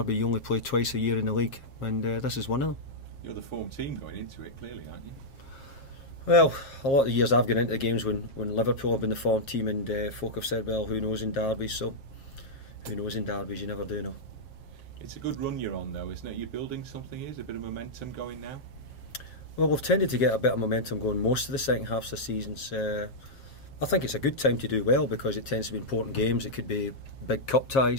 You only play twice a year in the league, and this is one of them. You're the form team going into it, clearly, aren't you? Well, a lot of the years I've gone into the games when Liverpool have been the form team, and folk have said, well, who knows in derbies, so who knows in derbies, you never do know. It's a good run you're on, though, isn't it? You're building something, is a bit of momentum going now? Well, we've tended to get a bit of momentum going most of the second half of the seasons. I think it's a good time to do well because it tends to be important games. It could be big cup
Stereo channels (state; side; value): late; right; 7.4 ms